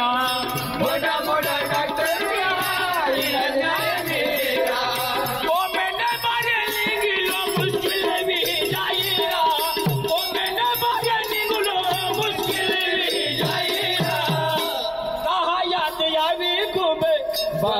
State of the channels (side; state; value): both; identical; correlation 1.00